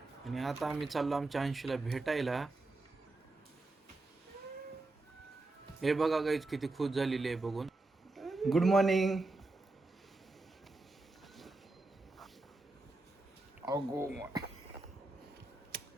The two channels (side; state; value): left; quieter; 3.1 dB